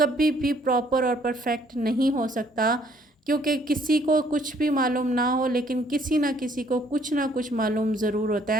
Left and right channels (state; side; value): normal; both; correlation 0.63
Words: بھی پراپر اور پرفیکٹ نہیں ہو سکتا، کیونکہ کسی کو کچھ بھی معلوم نہ ہو لیکن کسی نہ کسی کو کچھ نہ کچھ معلوم ضرور ہوتا